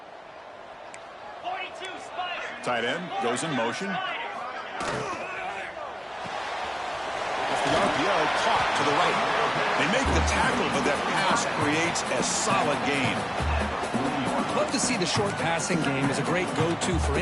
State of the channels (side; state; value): both; identical; correlation 1.00